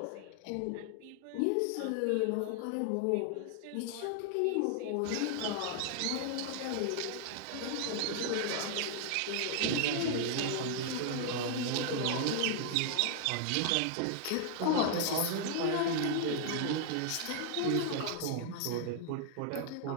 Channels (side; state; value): both; different; correlation 0.00